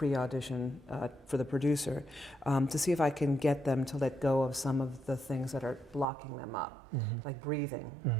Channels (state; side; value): drops out; left; at 6.1 s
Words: for the producer, to see if I can get them to let go of some of the things that are blocking them up, mm-hmm. like breathing.